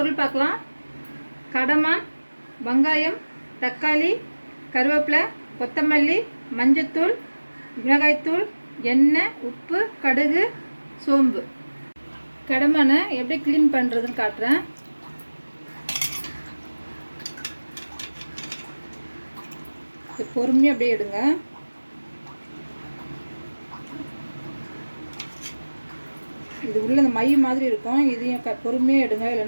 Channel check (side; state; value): both; inverted; correlation -1.00